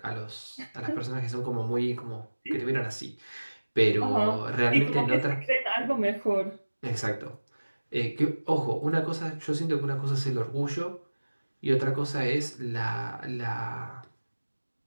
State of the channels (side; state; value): both; inverted; correlation -1.00